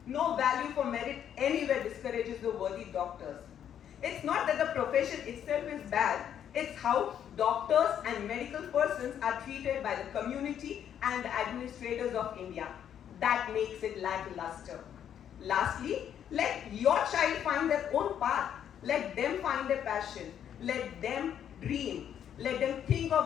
No value for merit anywhere discourages the worthy doctors. It's not that the profession itself is bad, it's how doctors and medical persons are treated by the community and the administrators of India. That makes it lackluster. Lastly, let your child find their own path. Let them find their passion. Let them dream. Let them think of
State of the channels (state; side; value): quieter; right; 9.4 dB